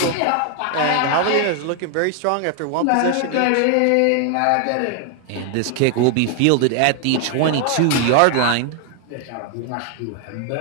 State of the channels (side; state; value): both; different; correlation 0.00